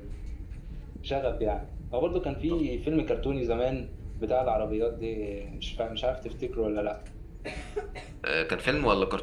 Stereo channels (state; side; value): identical; both; correlation 1.00